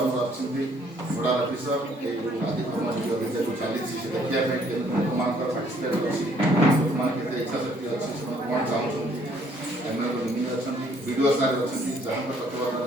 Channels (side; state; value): both; normal; correlation 0.63